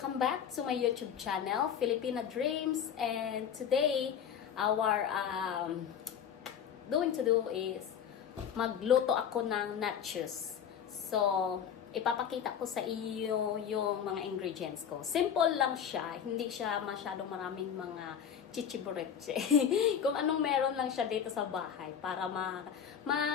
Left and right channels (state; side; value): quieter; right; 8.3 dB